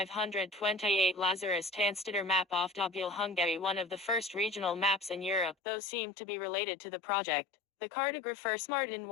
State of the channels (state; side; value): drops out; right; at 5.6 s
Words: Lazarus Tanstiller map of Dobul Hungary, one of the first regional maps in Europe, though seemed to be related to the project. The cartographers Martin